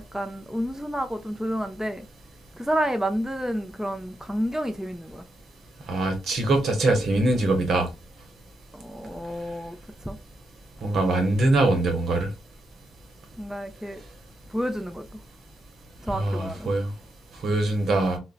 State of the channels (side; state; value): both; normal; correlation 0.84